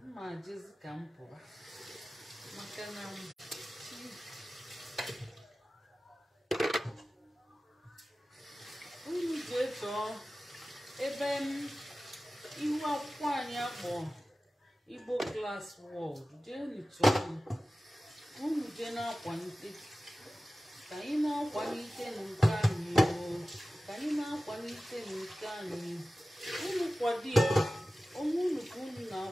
mma jezi ka m pụwa maka na unu ji eto ebe ihu akwụkwọ anyị akpọ Igbo Class World jee nụchọọ unu jee na-akwalite ka anyị na-akwalite nke anyị ka anyị na-akwalite nke anyị unu kwado ya onwe unu ka unu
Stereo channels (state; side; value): normal; both; correlation 0.96